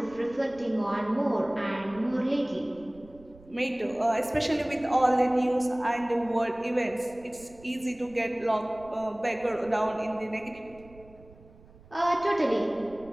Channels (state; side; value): noise; right; rumble, 23 dB below the sound